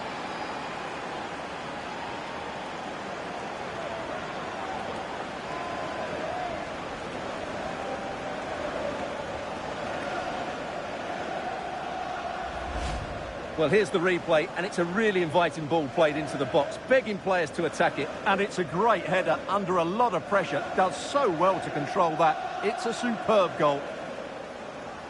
Well, here's the replay, and it's a really inviting ball played into the box, begging players to attack it, and it's a great header under a lot of pressure. Does so well to control that. It's a superb goal.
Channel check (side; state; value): both; identical; correlation 1.00